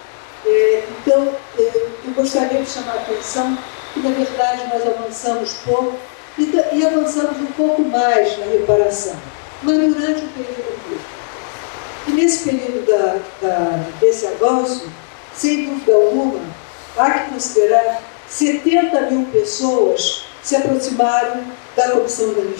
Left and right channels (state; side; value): silent; right; digital silence